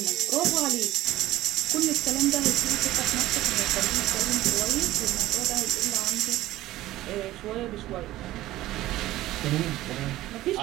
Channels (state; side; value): quieter; left; 15.8 dB